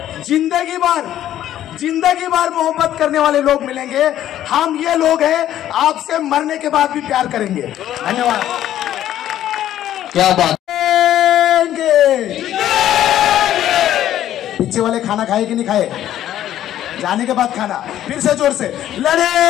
जिंदगी भर मोहब्बत करने वाले लोग मिलेंगे। हम ये लोग हैं, आपसे मरने के बाद भी प्यार करेंगे। धन्यवाद। क्या बात। पीछे वाले खाना खाए कि नहीं खाए? जाने के बाद खाना, फिर से जोर से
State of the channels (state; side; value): quieter; right; 12.0 dB